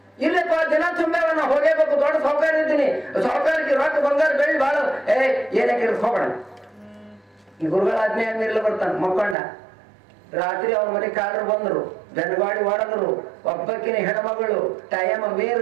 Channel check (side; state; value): left; drops out; at 9.3 s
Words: ಇಲ್ಲಪ್ಪ ದಿನ ತುಂಬೆವ ನಾ ಹೋಗೇಬೇಕು, ದೊಡ್ಡ ಸಾವುಕಾರ ಇದ್ದೀನಿ, ಸಾವುಕಾರಕ್ಕೆ ರೊಕ್ಕ ಬಂಗಾರ ಬೆಳ್ಳಿ ಬಾಳ ಏನಕ್ಕೆ ಹೋಗೋಣ. ಗುರುಗಳ ಆಜ್ಞೆ ಆದ್ಮೇಲೆ ಬರ್ತಾನ ಮಕ್ಕೊಂಡ. ರಾತ್ರಿ ಅವ್ರ ಮನೆ ಕಾಡ್ರು ಬಂದ್ರು, ಬೆನ್ಗಾಡಿ ಹೊಡೆದ್ರು. ಒಬ್ಬಕ್ಕಿನ ಹೆಣ್ಮಗಳು ಟೈಮ